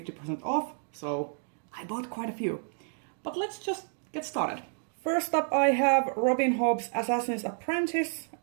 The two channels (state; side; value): silent; left; 58 dB below the other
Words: off. So I bought quite a few. But let's just get started. First up I have Robin Hobb's Assassin's Apprentice.